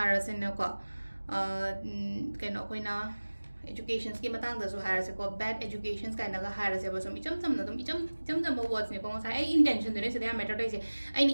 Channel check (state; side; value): inverted; both; correlation -1.00